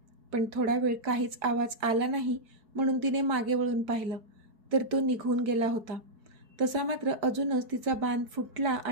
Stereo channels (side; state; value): left; late; 4.7 ms